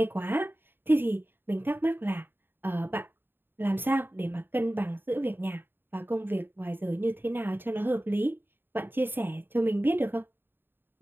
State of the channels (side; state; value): left; late; 0.099 ms